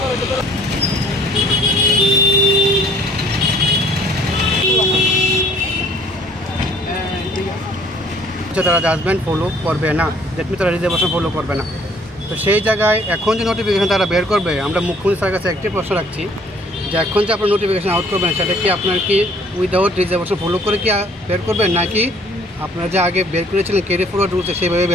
তারা জাজমেন্ট ফলো করবে না, দ্যাট মিনস তারা রিজার্ভেশন ফলো করবে না। তো সেই জায়গায় এখন যে নোটিফিকেশন তারা বের করবে, আমরা মুখ্যমন্ত্রী স্যারের কাছে একটি প্রশ্ন রাখছি যে এখন যে আপনার নোটিফিকেশন আউট করবেন সেটা কি আপনার কি উইদাউট রিজার্ভেশন ফলো করে কি বের করবেন, নাকি আপনারা যে আগে বের করেছিলেন ক্যারি ফরওয়ার্ড রুলসে সেইভাবে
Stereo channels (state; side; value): normal; both; correlation 0.58